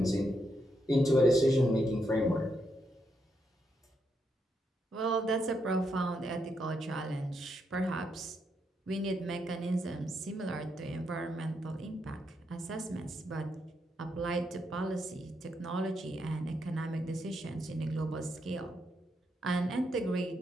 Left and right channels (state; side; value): normal; both; correlation 0.80